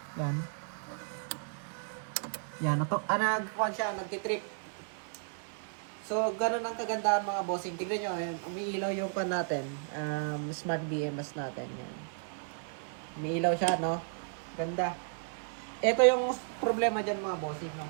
Yan. Yan, nagkuan siya, nagtitrip. So, ganun ang kagandahan mga bossing. Tignan nyo, yan, umiilaw yung kuan natin. Smart BMS natin. Yan. Umiilaw siya, no? Ganda. Ito yung problema dyan mga bossing, no?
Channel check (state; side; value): silent; left; digital silence